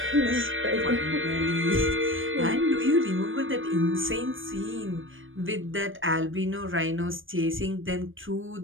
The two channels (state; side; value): late; left; 0.58 ms